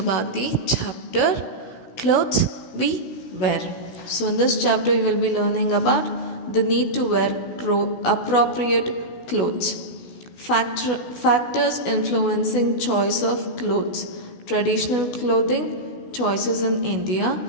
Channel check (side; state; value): right; late; 16 ms